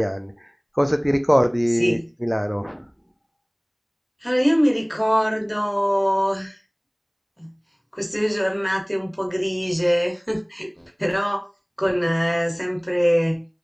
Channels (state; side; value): identical; both; correlation 1.00